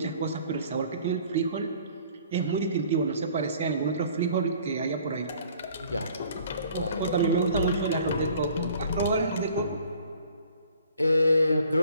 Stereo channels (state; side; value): inverted; both; correlation -0.54